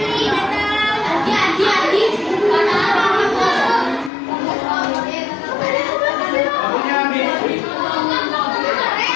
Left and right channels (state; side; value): drops out; right; at 4.1 s